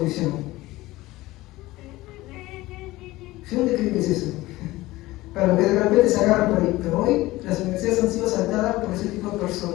¿Dónde creen que es eso? Para los que de repente se agarran por ahí. Pero hoy las universidades han sido saltadas por ese tipo de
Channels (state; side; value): quieter; right; 18.5 dB